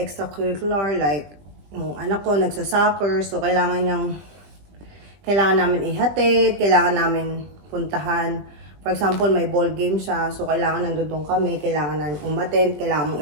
like yung anak ko nagsa-soccer, so kailangan namin ihatid, kailangan namin puntahan. For example, may ball game siya, so kailangan nandun kami, kailangan namin umattend, kailangan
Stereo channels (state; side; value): late; left; 20 ms